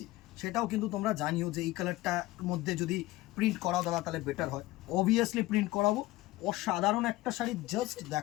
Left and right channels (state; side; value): quieter; right; 18.2 dB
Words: সেটাও কিন্তু তোমরা জানিও যে এই কালারটার মধ্যে যদি প্রিন্ট করাও দাদা তাহলে বেটার হয়। অবভিয়াসলি প্রিন্ট করাবো। অসাধারণ একটা শাড়ি, জাস্ট